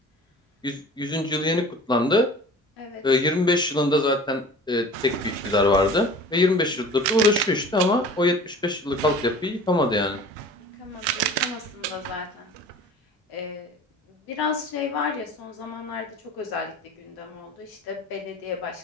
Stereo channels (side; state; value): both; normal; correlation 0.43